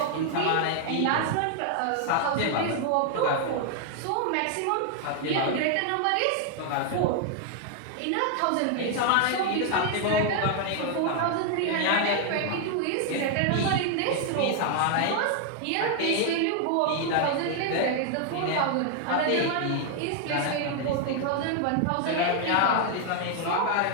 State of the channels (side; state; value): both; different; correlation 0.00